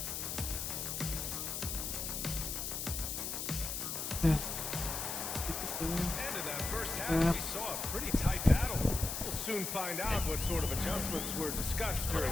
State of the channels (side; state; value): left; noise; hiss, 3 dB below the sound